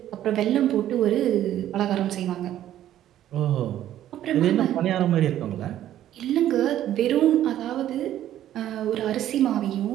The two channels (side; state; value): left; quieter; 12.1 dB